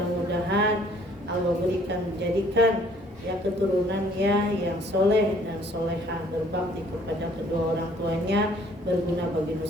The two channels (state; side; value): normal; both; correlation 0.59